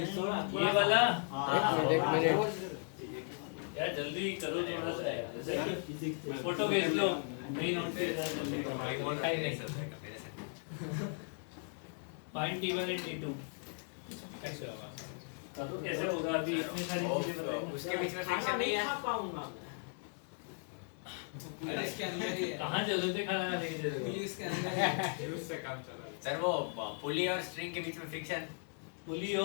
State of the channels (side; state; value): right; silent; 53 dB below the other